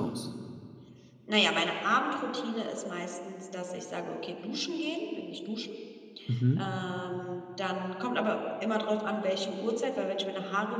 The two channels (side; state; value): both; identical; correlation 1.00